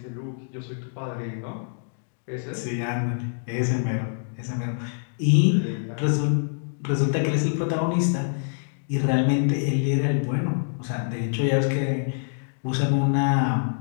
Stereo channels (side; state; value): right; silent; digital silence